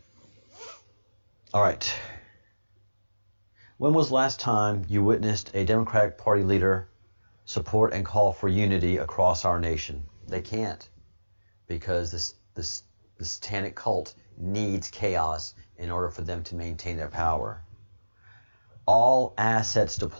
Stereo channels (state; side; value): inverted; both; correlation -1.00